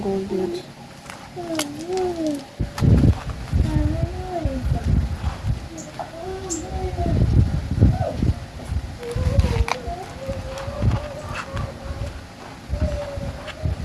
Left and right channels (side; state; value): both; identical; correlation 1.00